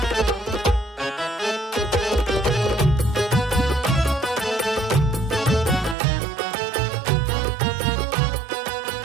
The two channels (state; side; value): drops out; left; at 6.0 s